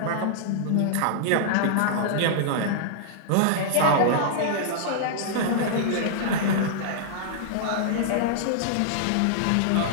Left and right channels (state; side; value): different; both; correlation -0.01